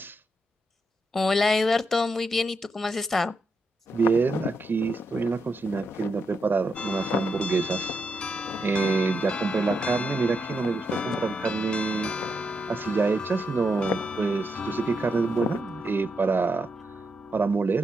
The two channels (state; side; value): normal; both; correlation 0.83